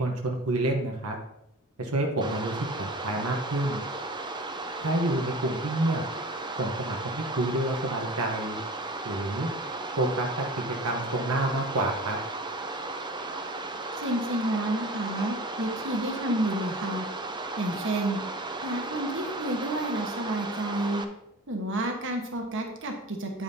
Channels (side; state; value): both; normal; correlation 0.38